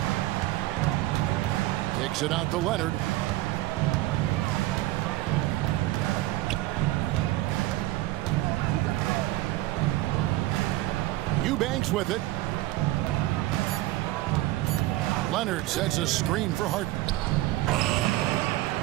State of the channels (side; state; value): left; quieter; 17.1 dB